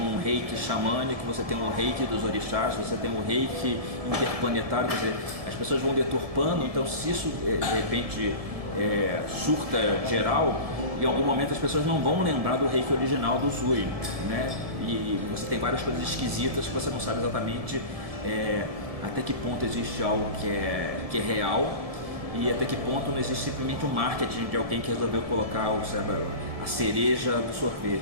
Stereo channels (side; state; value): left; late; 1.7 ms